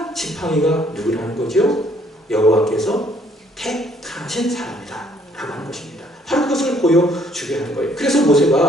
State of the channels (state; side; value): normal; both; correlation 0.64